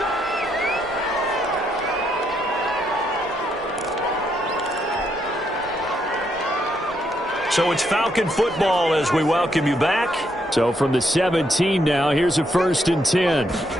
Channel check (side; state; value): both; normal; correlation 0.76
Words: So it's Falcon football as we welcome you back. So from the 17 now, here's a 1st and 10.